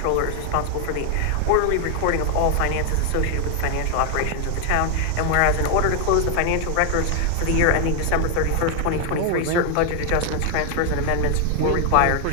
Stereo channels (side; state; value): both; different; correlation 0.00